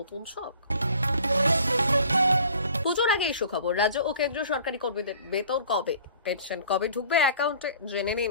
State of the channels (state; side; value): inverted; both; correlation -0.50